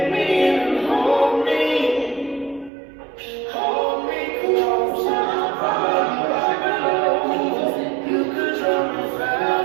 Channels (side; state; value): left; drops out; at 2.7 s